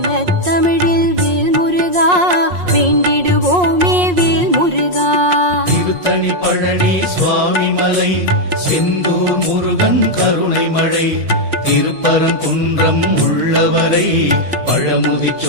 தமிழில் வேல் முருகா, வேண்டிடுவோமே வேல் முருகா. திருத்தணி பழனி சுவாமி மலை செந்தூர் முருகன் கருணை மழை திருப்பரங்குன்றம் உள்ளவரை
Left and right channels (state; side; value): late; left; 5.6 ms